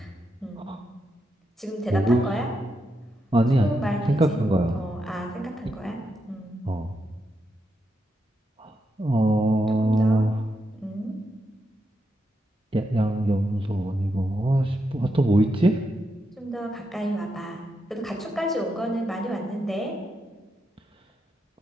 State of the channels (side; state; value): both; normal; correlation 0.83